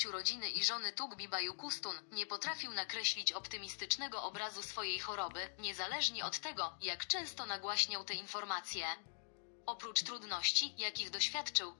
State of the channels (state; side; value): silent; right; digital silence